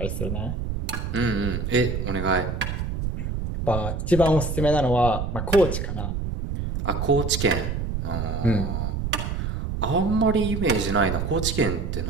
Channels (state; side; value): noise; right; rumble, 3 dB below the sound